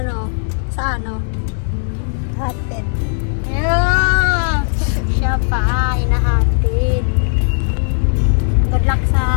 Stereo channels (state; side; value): silent; right; digital silence